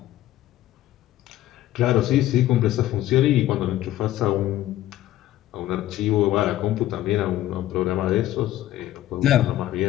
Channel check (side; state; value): right; quieter; 14.1 dB